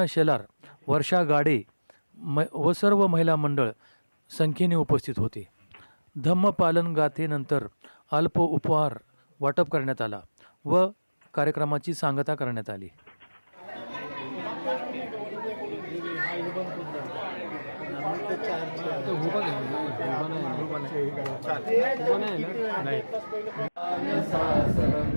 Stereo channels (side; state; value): both; inverted; correlation -1.00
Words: शेलार, वर्षा गाडे व सर्व महिला मंडळ संख्येने उपस्थित होते. धम्मपालन गाथेनंतर अल्प उपहार वाटप करण्यात आला व कार्यक्रमाची सांगता करण्यात आली.